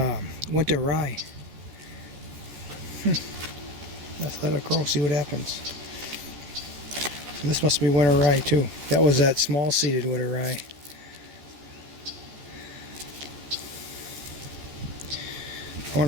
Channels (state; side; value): late; left; 14 ms